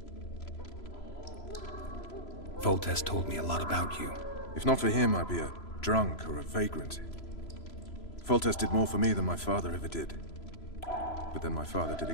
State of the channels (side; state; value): right; late; 3.0 ms